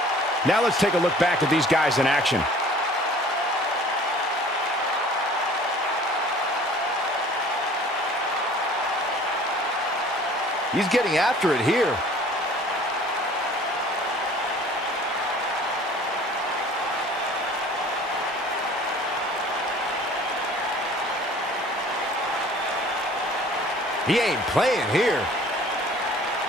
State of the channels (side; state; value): both; normal; correlation 0.49